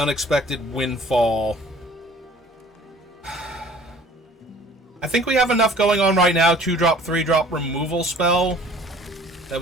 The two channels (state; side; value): normal; both; correlation 0.51